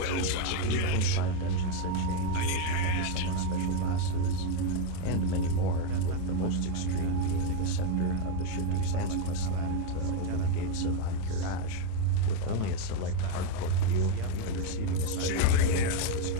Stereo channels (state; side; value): different; both; correlation 0.02